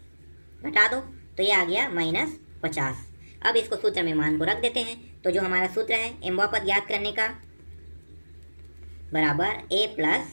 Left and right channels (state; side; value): inverted; both; correlation -1.00